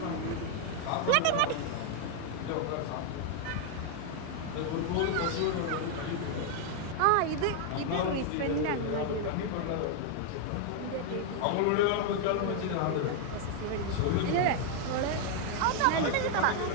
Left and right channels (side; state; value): both; different; correlation 0.00